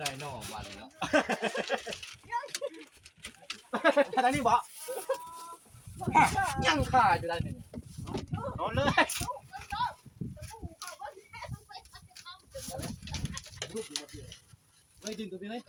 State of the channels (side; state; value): both; identical; correlation 1.00